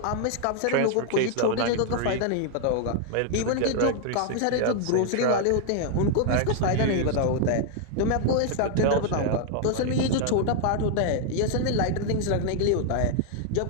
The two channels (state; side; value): different; both; correlation 0.00